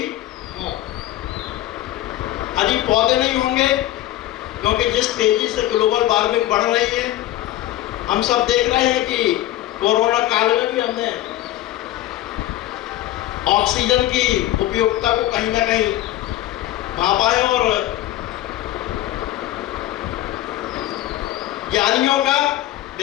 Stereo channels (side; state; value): right; quieter; 14.6 dB